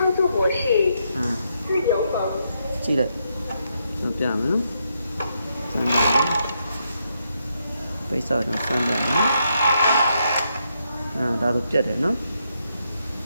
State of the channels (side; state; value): both; inverted; correlation -0.79